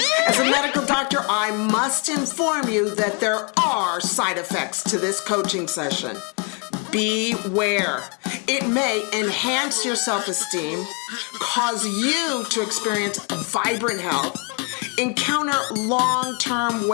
As a medical doctor, I must inform you that there are side effects to this coaching session. Beware. It may enhance your self-esteem, cause you to experience vibrant health, encounter long-term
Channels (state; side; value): quieter; right; 35.0 dB